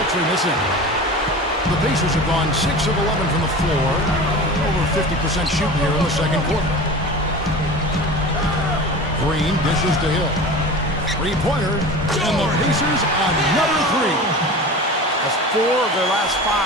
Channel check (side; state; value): both; normal; correlation 0.34